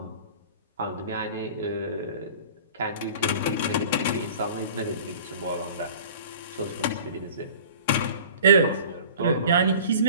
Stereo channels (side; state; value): both; inverted; correlation -0.44